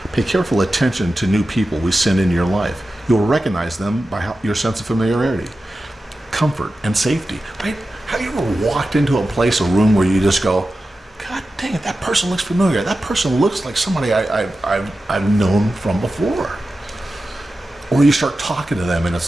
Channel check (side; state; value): both; normal; correlation 0.93